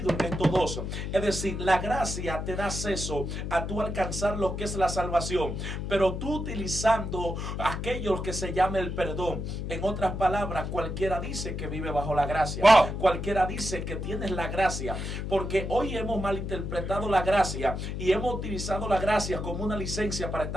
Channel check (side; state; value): left; noise; hum, 4 dB below the sound